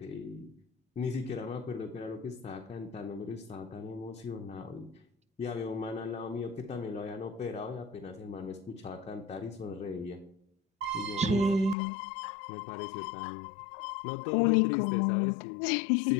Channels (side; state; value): right; drops out; at 11.8 s